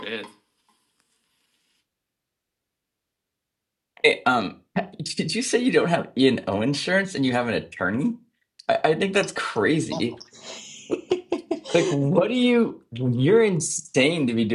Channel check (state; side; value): identical; both; correlation 1.00